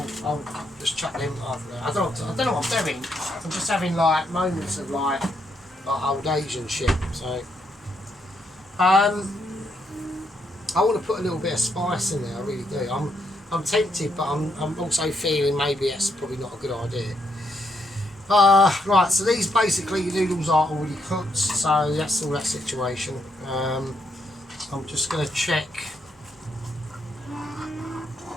just chuck them after that. I don't know what I'm doing. I'm just having like moments of like old Asian shit. So I want to put a little bit of spice in there. I really do. I'm tempted, but I'm also feeling maybe that's probably not a good idea. Right. So these basically the noodles are already cooked. So that's all that situation. I'm just going to check.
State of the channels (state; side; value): normal; both; correlation 0.77